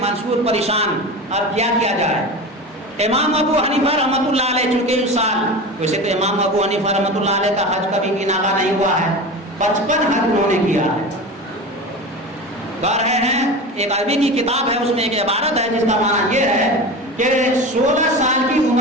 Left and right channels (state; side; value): normal; both; correlation 0.29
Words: منصور پریشان, اب کیا کیا جائے. امام ابو حنیفہ رحمۃ اللہ علیہ چونکہ اس سال, ویسے تو امام ابو حنیفہ رحمۃ اللہ علیہ کا حج کبھی بھی ناغا نہیں ہوا ہے, 55 حج انہوں نے کیا ہے. کہہ رہے ہیں ایک عربی کی کتاب ہے, اس میں ایک عبارت ہے جس کا معنی یہ ہے کہ 16 سال کی